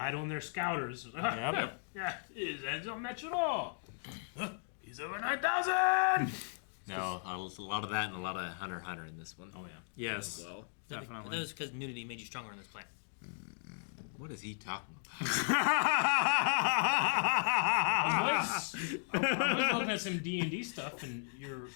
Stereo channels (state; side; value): silent; right; digital silence